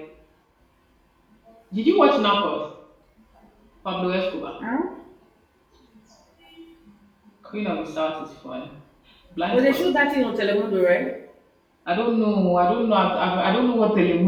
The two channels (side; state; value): both; identical; correlation 1.00